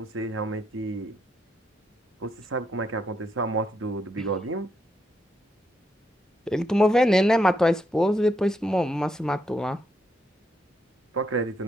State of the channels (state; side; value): normal; both; correlation 0.78